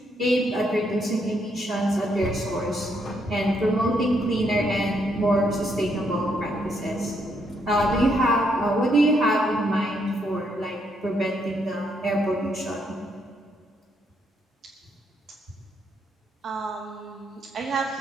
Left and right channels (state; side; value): normal; both; correlation 0.75